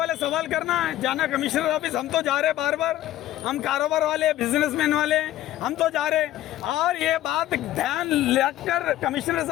सवाल करना है, जाना कमिश्नर ऑफिस, हम तो जा रहे बार बार, हम कारोबार वाले, बिजनेसमैन वाले, हम तो जा रहे। और ये बात ध्यान रखकर कमिश्नर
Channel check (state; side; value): quieter; right; 13.8 dB